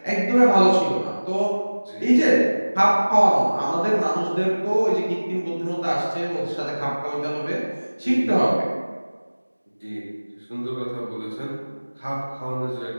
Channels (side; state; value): both; inverted; correlation -1.00